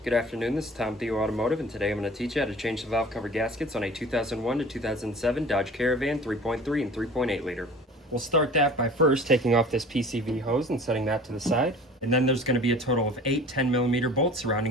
Good afternoon, this is TOMTHEO Automotive, and today I'm going to teach you how to change the valve cover gaskets on a 2001 to 2007 Dodge Caravan 3.3 and 3.8 liter. We'll start that by first taking off this PCV hose and setting that to the side. And then there's going to be a total of 8 10mm bolts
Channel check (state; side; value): normal; both; correlation 0.43